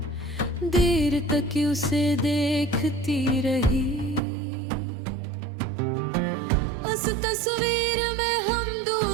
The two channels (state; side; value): drops out; left; at 4.2 s